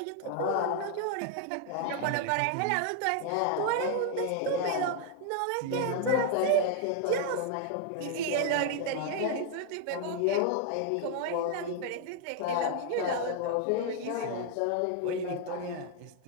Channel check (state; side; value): different; both; correlation 0.00